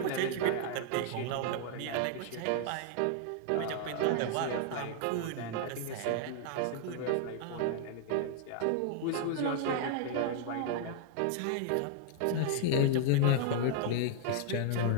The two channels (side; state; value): both; different; correlation -0.01